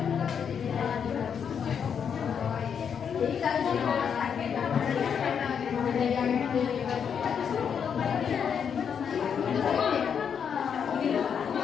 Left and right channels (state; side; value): quieter; right; 7.4 dB